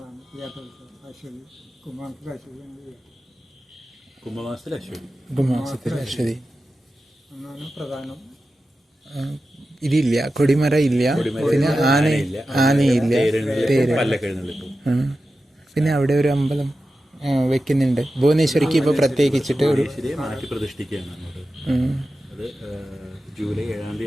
തീയാട്ടോത്സവം. അശ്വതി കുംഭമാസത്തിൽ അശ്വതി എന്നാണ് പ്രധാനം. ഇതില്ല, കൊടിമര ഇല്ല, പിന്നെ ആനയില്ല, തേര്. പിന്നെ അവിടെ ഒരു അമ്പലം വെക്കുന്നുണ്ട് ഭുവനേശ്വരിക്ക്. ഇപ്പൊ പ്രത്യേകിച്ചിട്ട് ഒരു മാറ്റി പ്രതിഷ്ഠിക്കുകയാണ് അങ്ങോട്ട്. അത് ജൂലൈ 7-ാം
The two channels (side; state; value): both; normal; correlation 0.92